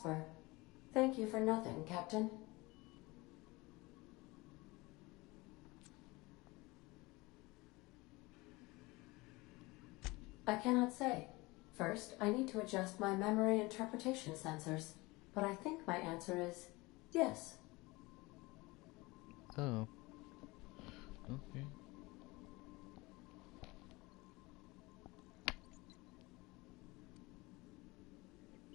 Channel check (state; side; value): quieter; right; 23.0 dB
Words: Thank you for nothing, Captain. I cannot say. First, I need to adjust my memory interpretation sensors, but I think my answer is yes. Oh. Okay.